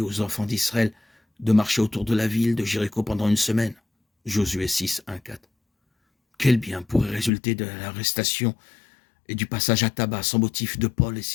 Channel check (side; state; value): right; drops out; at 7.3 s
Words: aux enfants d'Israël de marcher autour de la ville de Jéricho pendant une semaine? Josué 6, 1, 4. Quel bien pourrait résulter de l'arrestation et du passage à tabac sans motif de Paul et